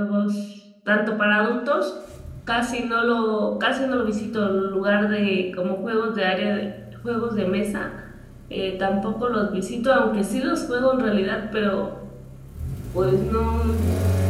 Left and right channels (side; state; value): both; identical; correlation 1.00